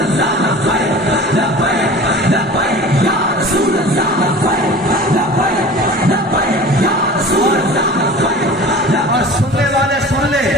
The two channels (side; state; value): both; normal; correlation 0.39